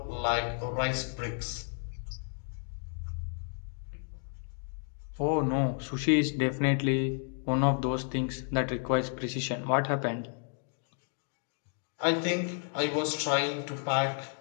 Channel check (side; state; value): right; silent; 56 dB below the other